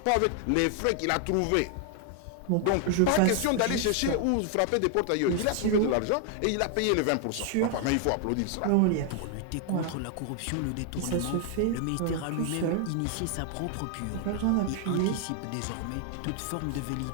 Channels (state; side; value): different; both; correlation 0.00